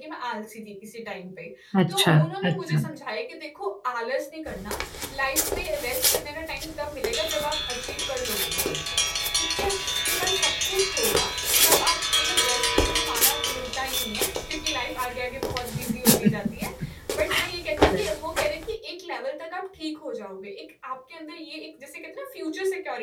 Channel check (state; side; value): identical; both; correlation 1.00